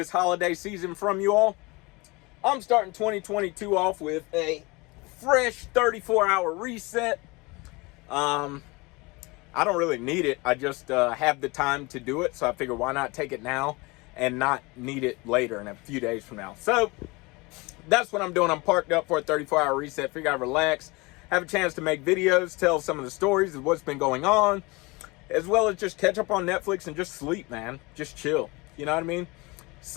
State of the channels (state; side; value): quieter; right; 25.0 dB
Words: holiday season from you all. I'm starting 2022 off with a fresh 34-hour reset. I don't really need it. I just have the time to do it, so I figure why not take it now and not need it later in a few days from now. So that's what I'm doing. I'm parked up for a 34-hour reset. Figure I'd relax, have a chance to make videos, tell some of the stories of what's been going on, as well as just catch up on Netflix and just sleep, man. Just chill. You know what I mean?